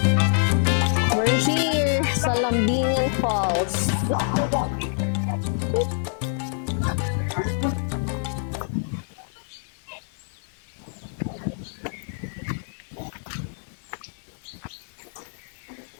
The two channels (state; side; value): silent; right; digital silence